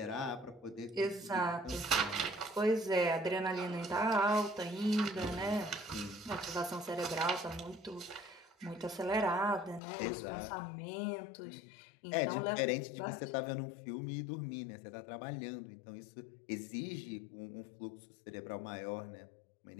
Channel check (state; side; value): drops out; right; at 9.8 s